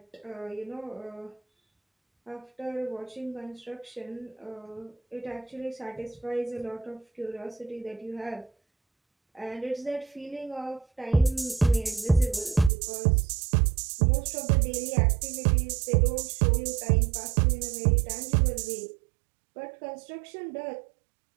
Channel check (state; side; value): drops out; left; at 12.7 s